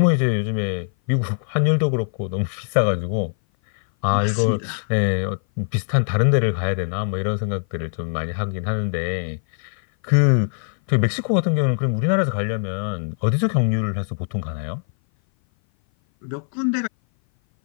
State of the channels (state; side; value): silent; right; 57 dB below the other